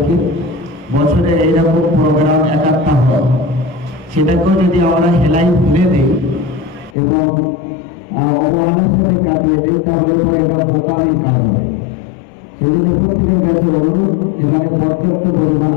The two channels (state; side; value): drops out; right; at 7.0 s